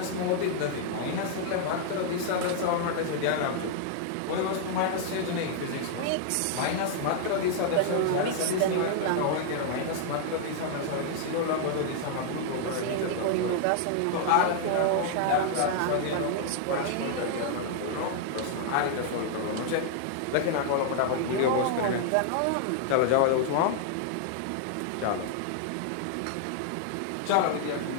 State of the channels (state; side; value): different; both; correlation -0.01